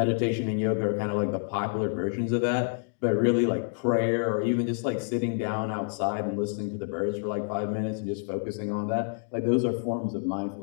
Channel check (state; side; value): silent; right; digital silence